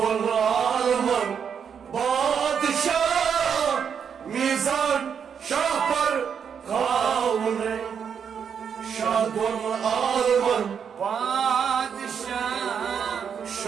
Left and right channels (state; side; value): quieter; left; 7.3 dB